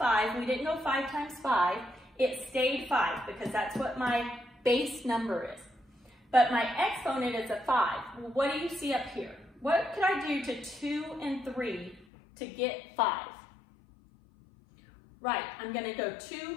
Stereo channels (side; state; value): right; drops out; at 12.1 s